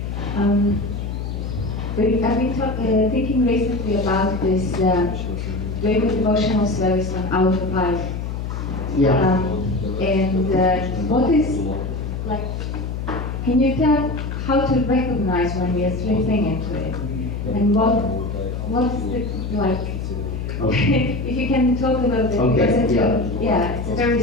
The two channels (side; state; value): left; noise; hum, 4 dB below the sound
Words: I've been thinking recently about this doing the devotional service on autopilot. Yeah. What is, can you tell how to recognize when we are slipping into it? And what's the, Okay. if you can talk a little bit, Okay, because it's a very